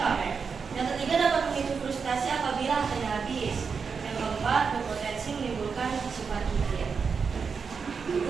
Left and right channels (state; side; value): quieter; left; 5.6 dB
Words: pamer. Yang ketiga, dapat memicu frustasi apabila hartanya habis. Yang keempat, berpotensi menimbulkan sifat kikir.